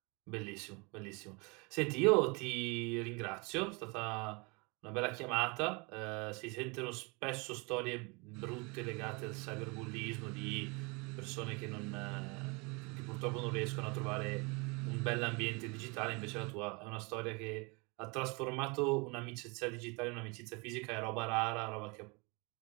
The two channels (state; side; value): quieter; left; 29.4 dB